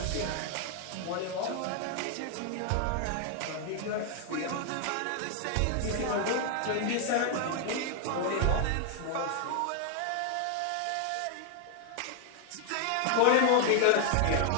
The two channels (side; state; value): both; different; correlation 0.00